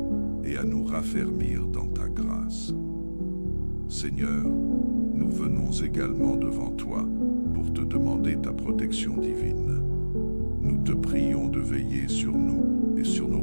et à nous raffermir dans ta grâce. Seigneur, nous venons également devant toi pour te demander ta protection divine. Nous te prions de veiller sur nous et sur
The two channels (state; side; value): inverted; both; correlation -1.00